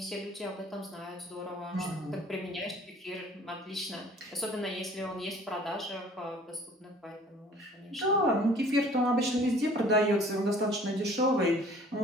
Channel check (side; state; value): both; normal; correlation 0.52